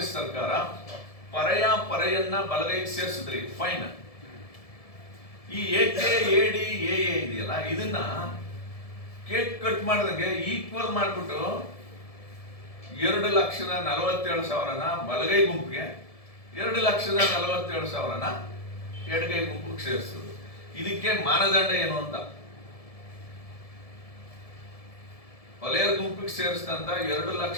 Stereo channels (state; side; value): late; right; 1.7 ms